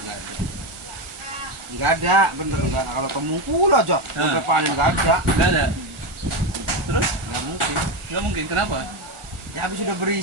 ada. Nggak ada, bener nggak. Kalau temungkul aja, sampai panen nggak ada. Nggak ada. Terus Nggak mungkin. nggak mungkin kenapa? Ya habis udah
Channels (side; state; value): left; late; 1.4 ms